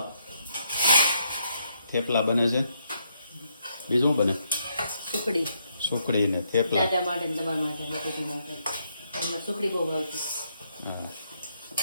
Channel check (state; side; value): inverted; both; correlation -0.75